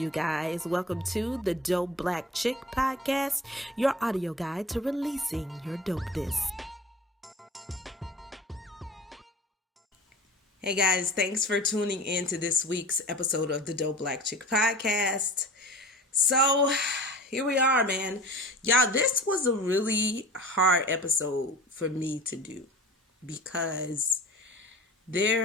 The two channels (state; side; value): normal; both; correlation 0.39